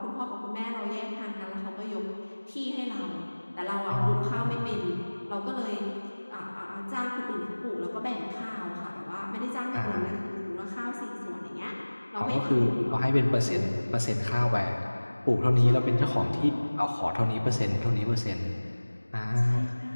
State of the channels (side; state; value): both; inverted; correlation -1.00